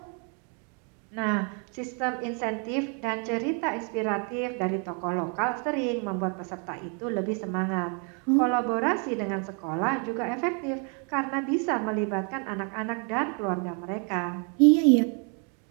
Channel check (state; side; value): quieter; left; 38.0 dB